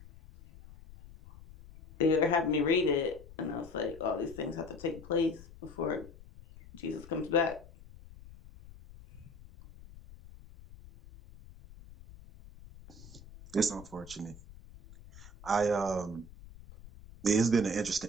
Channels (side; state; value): left; noise; rumble, 19 dB below the sound